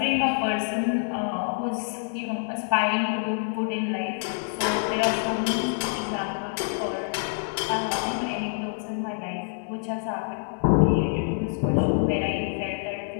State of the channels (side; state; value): right; silent; digital silence